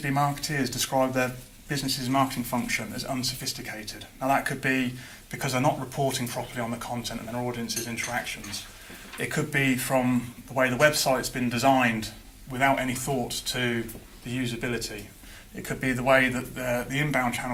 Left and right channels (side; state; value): both; identical; correlation 1.00